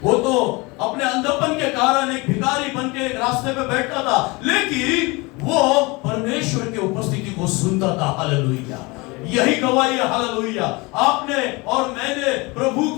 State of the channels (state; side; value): quieter; right; 25.4 dB